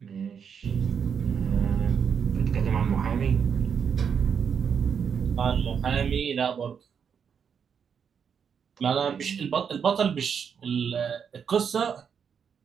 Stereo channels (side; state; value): left; quieter; 7.1 dB